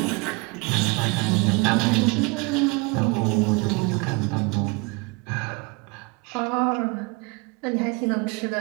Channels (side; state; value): left; quieter; 28.0 dB